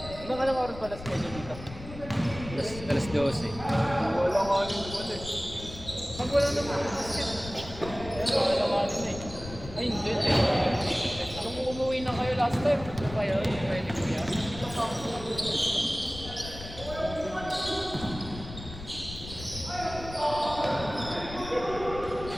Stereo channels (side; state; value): left; noise; rumble, 12 dB below the sound